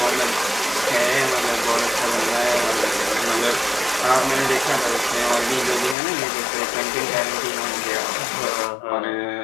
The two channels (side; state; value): right; drops out; at 6.0 s